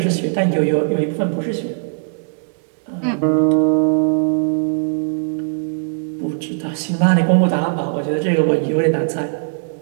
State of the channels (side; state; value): left; silent; digital silence